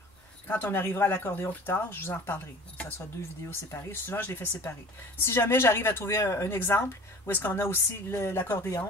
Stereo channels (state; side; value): normal; both; correlation 0.43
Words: Quand on arrivera à l'accordéon plus tard, je vous en reparlerai. Donc, ça sera 2 vidéos séparées. Souvent, je les fais séparer. Si jamais j'arrive à trouver un exemple où est-ce qu'on a aussi